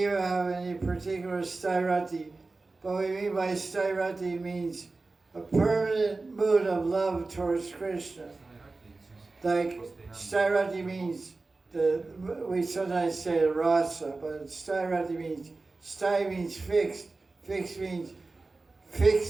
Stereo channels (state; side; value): quieter; left; 3.5 dB